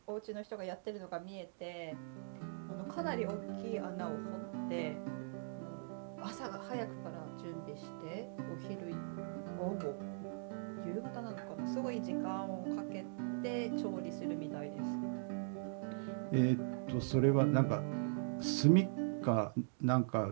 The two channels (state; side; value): silent; left; digital silence